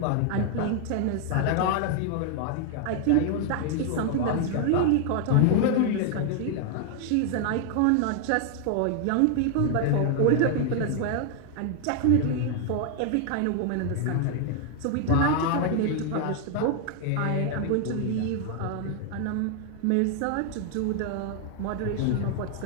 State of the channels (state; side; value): different; both; correlation 0.00